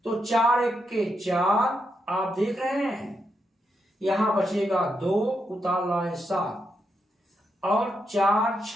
तो 4 एक के 4 आप देख रहे हैं, यहां बचेगा 2 उतार लाए 7 और 4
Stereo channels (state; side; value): normal; both; correlation 0.82